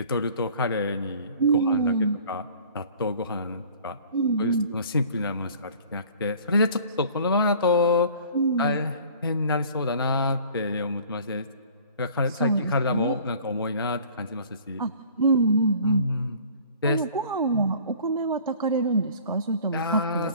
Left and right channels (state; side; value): inverted; both; correlation -0.49